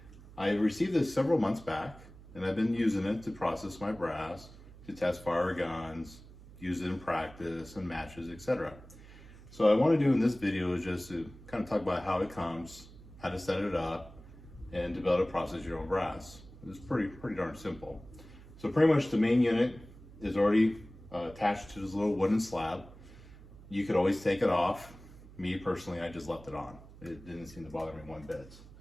I received this several months back and I've been using it to process my brass, to test fire guns, use it in practice and matches, etc. So what I want to do in this video is just to kind of talk about how it comes, how to set it up, and to be able to process your own brass. It's pretty darn simple. So pretty much the main unit is already attached to this little wooden slab. You could always take it off. Me personally, I just left it on. It didn't seem to bother me one bit.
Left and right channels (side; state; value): right; noise; hum, 19 dB below the sound